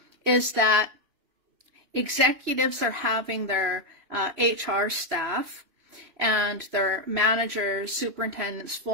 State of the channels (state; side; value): late; left; 3.0 ms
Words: is that executives are having their HR staff and their managers, superintendents,